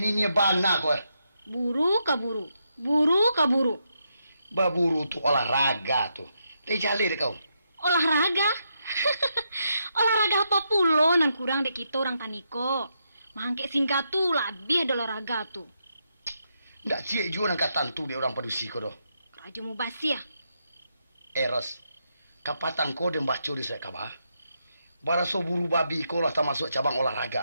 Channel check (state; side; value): inverted; both; correlation -0.81